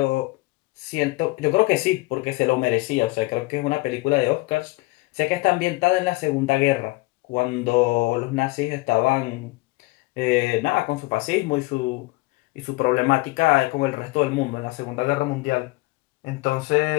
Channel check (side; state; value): right; quieter; 22.7 dB